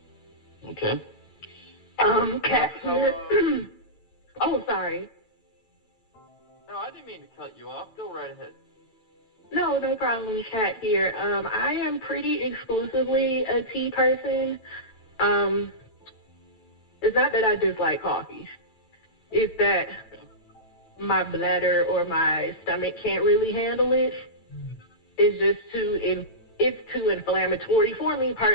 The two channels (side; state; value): right; late; 9.0 ms